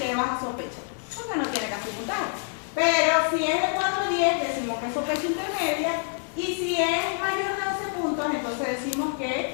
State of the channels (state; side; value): silent; right; 60 dB below the other